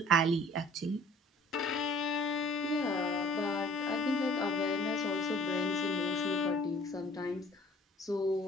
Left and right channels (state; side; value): normal; both; correlation 0.52